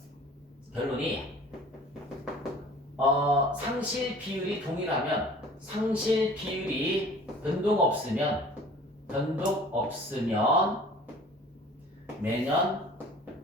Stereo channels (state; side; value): normal; both; correlation 0.47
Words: 상실 비율이 동일하면 상실 비율이 변동 없으면 매년